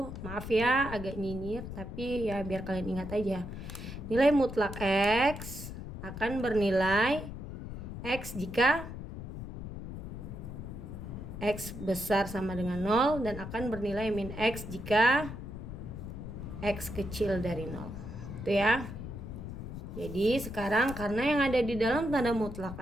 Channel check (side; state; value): left; noise; rumble, 9 dB below the sound